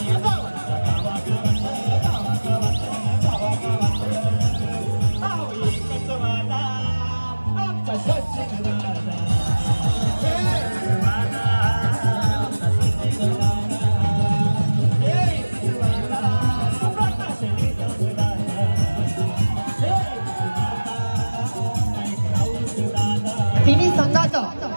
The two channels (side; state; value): both; inverted; correlation -1.00